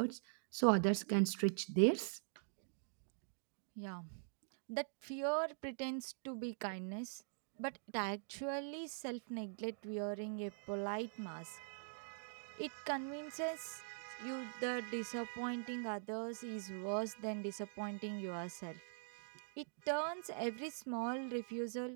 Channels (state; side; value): silent; left; digital silence